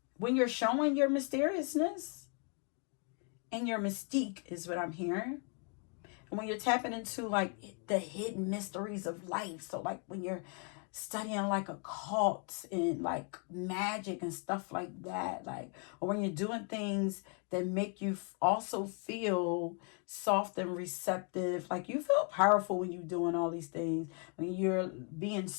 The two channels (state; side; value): quieter; right; 39.1 dB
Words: you're showing your mysteriousness and your mystique is what I'm hearing. And when you're tapping into like the hidden mysteries of life, so like when you're studying like occult and like magic and stuff like that, like, or when you're doing things that make you also feel soft and receptive, like you feel powerful when you're doing all these things. When you're being